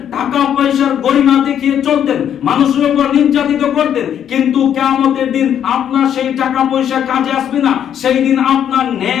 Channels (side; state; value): right; quieter; 9.5 dB